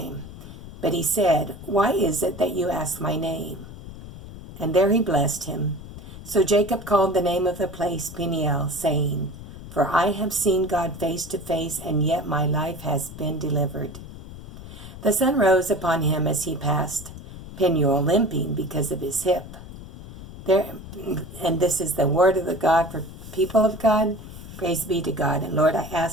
But he said, "Why is it that you ask my name?" And there he blessed him. So Jacob called the name of the place Peniel, saying, "For I have seen God face to face, and yet my life has been delivered." The sun rose upon him as he passed Peniel, limping because of his hip. And this is the word of the God for people of God. Praise be to God. And Lord, I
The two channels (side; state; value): left; noise; rumble, 14 dB below the sound